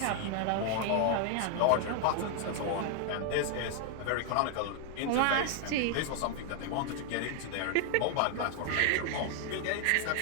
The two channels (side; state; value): both; different; correlation 0.00